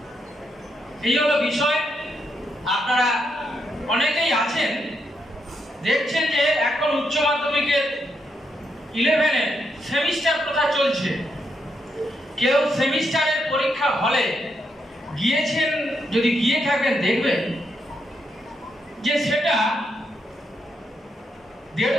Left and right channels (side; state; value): both; normal; correlation 0.80